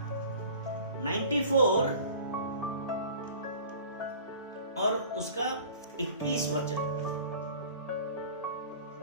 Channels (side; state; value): both; inverted; correlation -0.44